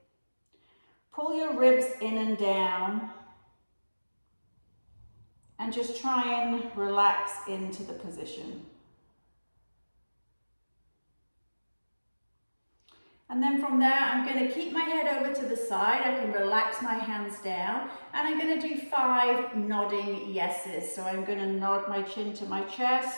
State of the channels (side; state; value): both; inverted; correlation -1.00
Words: Pull your ribs in and down and just try and relax into the position. And then from there, I'm going to keep my head over to the side. I can relax my hands down. And I'm going to do 5 nodding yeses. So I'm going to nod my chin to my